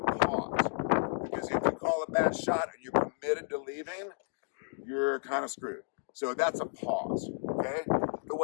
pause. Because if you call a bad shot and you're committed to leaving, you're kind of screwed. So that's a pause. Okay? The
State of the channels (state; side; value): silent; right; digital silence